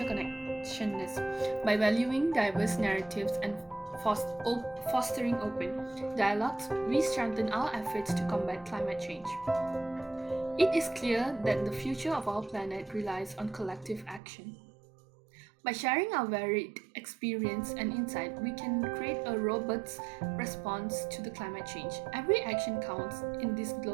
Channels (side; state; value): left; drops out; at 14.2 s